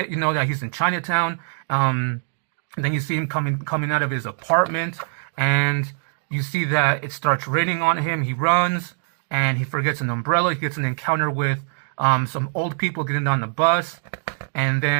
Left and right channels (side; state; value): left; silent; digital silence